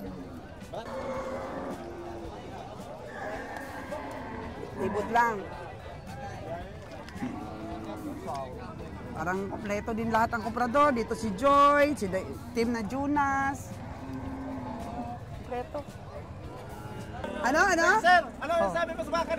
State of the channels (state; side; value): identical; both; correlation 1.00